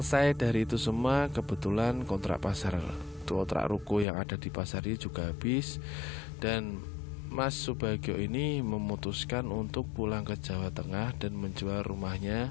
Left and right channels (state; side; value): drops out; right; at 4.0 s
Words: dari itu semua, kebetulan kontrak ruko yang ada di pasar ini juga habis, dan Mas Subagio ini memutuskan untuk pulang ke Jawa Tengah dan menjual